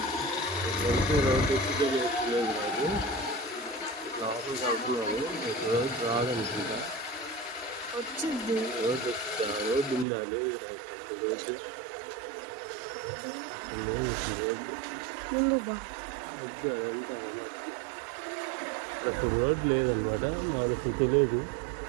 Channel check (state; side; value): drops out; left; at 10.1 s